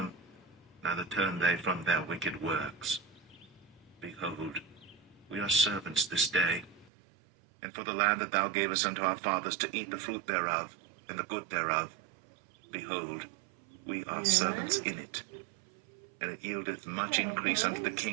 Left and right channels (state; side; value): drops out; left; at 6.9 s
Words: neither turned they from their wicked works. Behold, we are servants this day, and for the land that thou gavest unto our fathers to eat the fruit thereof, and the good thereof, behold, we are servants in it. And it yieldeth much increase unto the